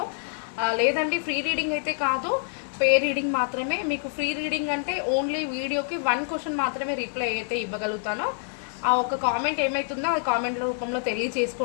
లేదండి, ఫ్రీ రీడింగ్ అయితే కాదు, పే రీడింగ్ మాత్రమే. మీకు ఫ్రీ రీడింగ్ అంటే ఓన్లీ వీడియోకి 1 క్వశ్చన్ మాత్రమే రిప్లై అయితే ఇవ్వగలుగుతాను. ఆ ఒక కామెంట్ ఏమవుతుందో ఆ కామెంట్ రూపంలో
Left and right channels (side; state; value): right; silent; digital silence